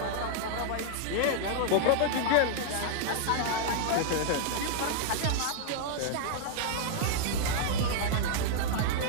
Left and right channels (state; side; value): different; both; correlation -0.01